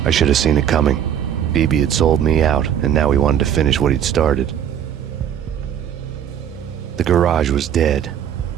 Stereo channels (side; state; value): left; quieter; 9.5 dB